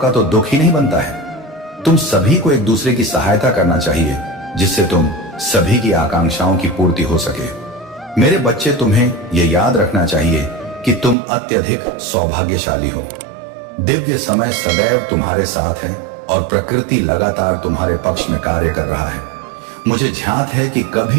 तो दुख ही नहीं बनता है। तुम सभी को एक दूसरे की सहायता करना चाहिए, जिससे तुम सभी की आकांक्षाओं की पूर्ति हो सके। मेरे बच्चे, तुम्हें यह याद रखना चाहिए कि तुम अत्यधिक सौभाग्यशाली हो। दिव्य समय सदैव तुम्हारे साथ है और प्रकृति लगातार तुम्हारे पक्ष में कार्य कर रहा है। मुझे ध्यात है कि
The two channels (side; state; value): left; drops out; at 11.2 s